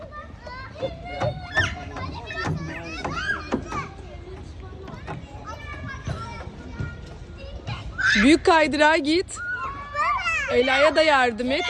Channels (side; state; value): both; identical; correlation 1.00